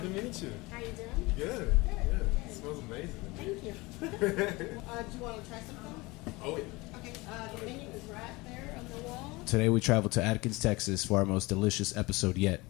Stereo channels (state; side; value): quieter; right; 23.1 dB